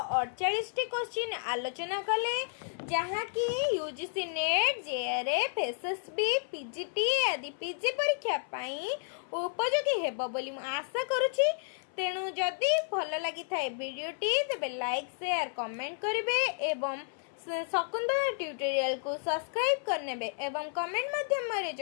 48 टी क्वेश्चन आलोचना कले, जहाँ की UGC net, JRF, SSB, PGT आदि पीजी परीक्षा पाई उपयोगी हेबो बोली मु आशा करूची। तेणु जदि भल लगी थाए वीडियोटी तेबे लाइक शेयर कमेंट करिवे एवं शकुंतला ट्यूटोरियल को सब्सक्राइब करनेबे एवं कमेंट माध्यम रे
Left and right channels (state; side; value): silent; right; 57 dB below the other